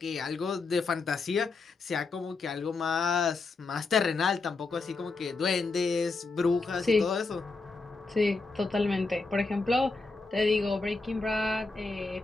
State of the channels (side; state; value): right; quieter; 3.8 dB